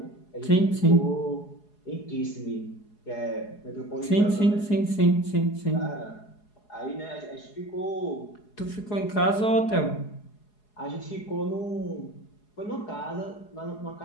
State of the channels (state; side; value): late; right; 4.8 ms